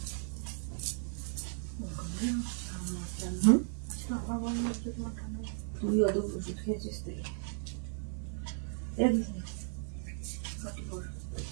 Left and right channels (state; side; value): silent; left; 54 dB below the other